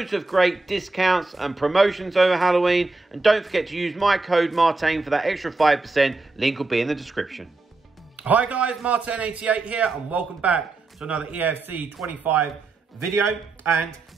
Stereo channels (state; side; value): quieter; left; 3.4 dB